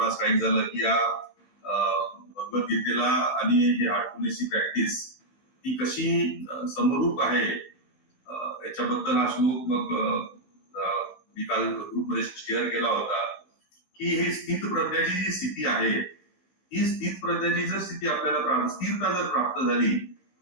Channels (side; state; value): right; late; 15 ms